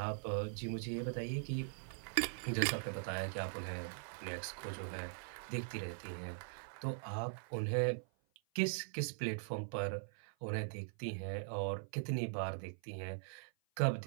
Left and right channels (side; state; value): left; silent; 50 dB below the other